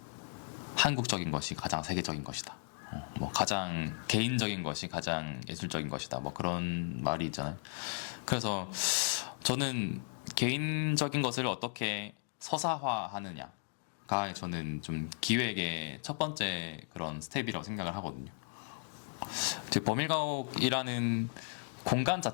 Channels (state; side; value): silent; right; 54 dB below the other